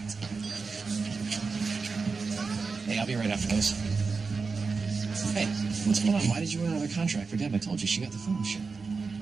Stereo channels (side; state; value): left; quieter; 4.6 dB